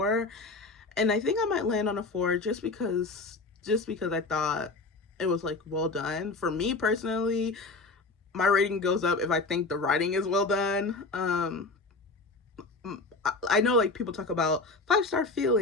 and I think I might land on a 4 just because I thought it was like well done. For me personally, my rating goes up if I think the writing is well done. I know like people talk about 5-star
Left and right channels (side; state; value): right; quieter; 3.5 dB